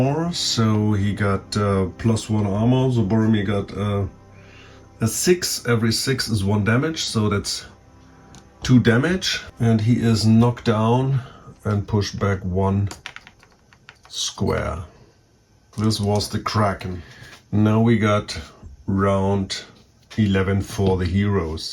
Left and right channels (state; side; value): identical; both; correlation 1.00